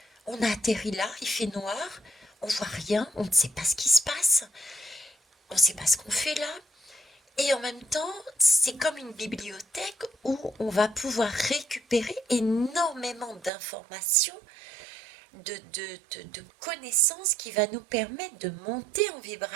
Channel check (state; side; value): drops out; left; at 13.5 s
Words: on a atterri là, il fait noir, on voit rien, on ne sait pas ce qui se passe, on ne sait pas ce qu'on fait là. Et en même temps, c'est comme une bibliothèque où on va pouvoir récupérer énormément d'informations, de connaissances qui va nous permettre de monter en